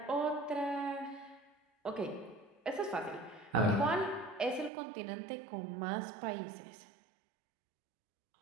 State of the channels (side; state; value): left; drops out; at 4.7 s